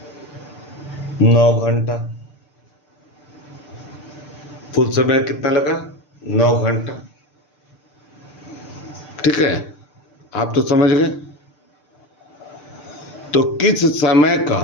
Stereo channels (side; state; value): right; late; 6.8 ms